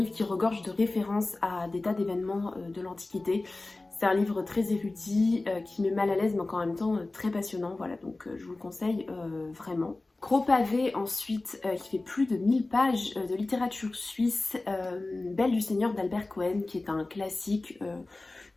qui regorge de références à des tas d'événements de l'Antiquité. C'est un livre très érudit, qui met mal à l'aise mais en même temps très passionnant. Voilà, donc je vous le conseille vraiment. Gros pavé ensuite, qui fait plus de 1000 pages de littérature suisse, Belle du Seigneur d'Albert Cohen, qui est un classique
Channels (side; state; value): right; quieter; 3.1 dB